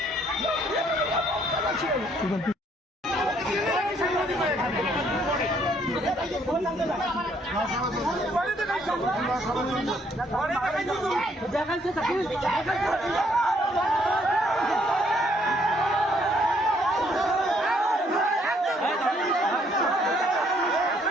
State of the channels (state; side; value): normal; both; correlation 0.67